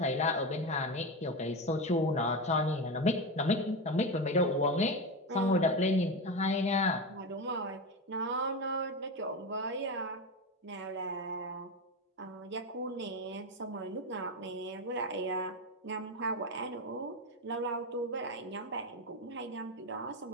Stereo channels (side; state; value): both; normal; correlation 0.18